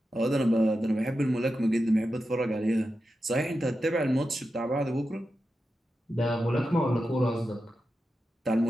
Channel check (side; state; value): both; normal; correlation 0.90